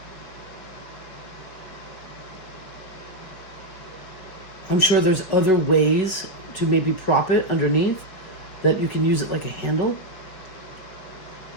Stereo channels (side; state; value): right; late; 5.3 ms